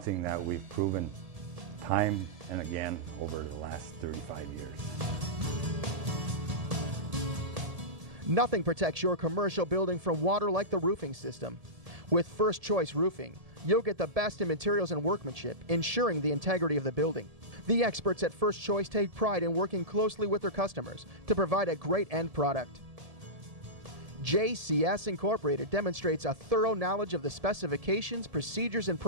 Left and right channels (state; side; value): late; left; 1.7 ms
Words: that we've proven time and again over the last 35 years. Nothing protects your commercial building from water like the roofing system. With First Choice Roofing, you'll get the best in materials and workmanship, ensuring the integrity of the building. The experts at First Choice take pride in working closely with their customers to provide a great end product. JCS Incorporated demonstrates a thorough knowledge of the specifications, procedures, and